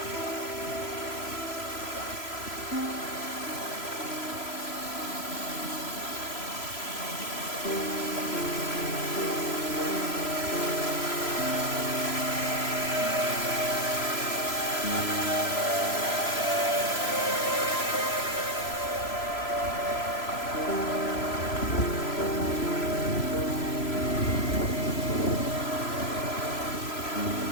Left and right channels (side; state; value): right; late; 3.0 ms